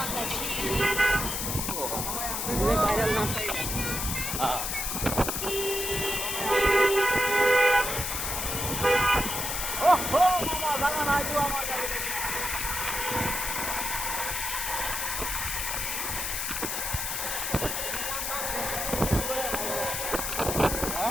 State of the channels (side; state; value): left; noise; hiss, 2 dB below the sound